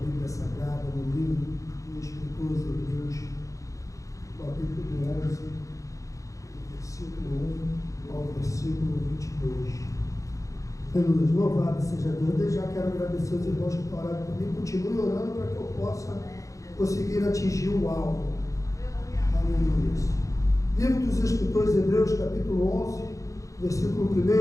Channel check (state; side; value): late; right; 0.16 ms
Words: Sagrada no livro do escritor aos Hebreus, capítulo 11, versículo 1 ao versículo 22. Aleluia. Louvado seja Deus. Desde já quero agradecer os irmãos que estão orando comigo. Continue orando para que eu possa conseguir atingir o alvo. Aleluia. Livro dos Escritores Hebreus, capítulo 11, versículo